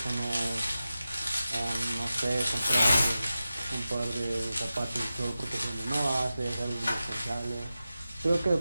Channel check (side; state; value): both; inverted; correlation -0.93